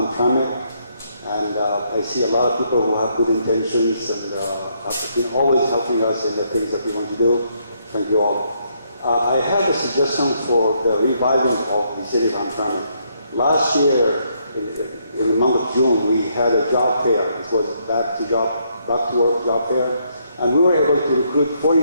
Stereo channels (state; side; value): inverted; both; correlation -0.73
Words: and I see a lot of people who have good intentions and have been always helping us in the things that we want to do. Thank you all. I have a suggestion for the reviving of the city of Hamtramck. Last year, in the month of June, we had a job fair. It was back to work job fair, and we were able to recruit